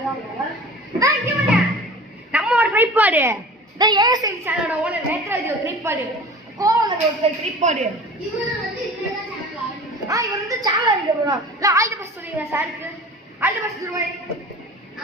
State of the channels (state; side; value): normal; both; correlation 0.39